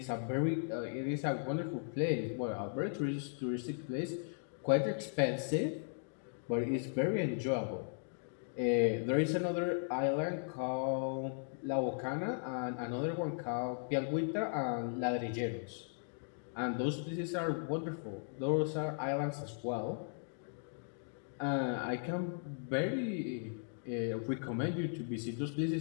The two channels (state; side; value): silent; right; digital silence